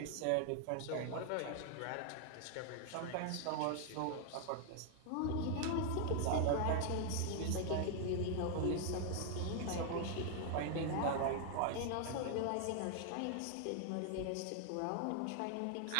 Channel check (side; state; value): both; different; correlation 0.00